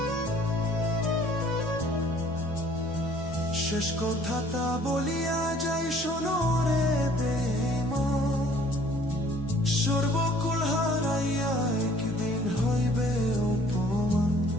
শেষ কথাটা বলিয়া যাই শোনো রে বেঈমান, সর্বকুল হারাইয়া একদিন হইবে অপমান।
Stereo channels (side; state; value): both; normal; correlation 0.56